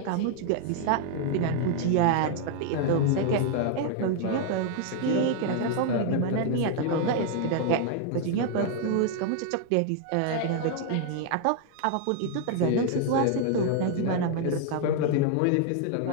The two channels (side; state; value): both; different; correlation 0.00